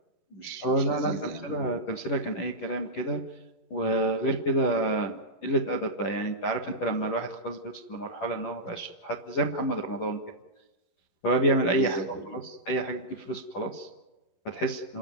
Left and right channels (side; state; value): right; late; 11 ms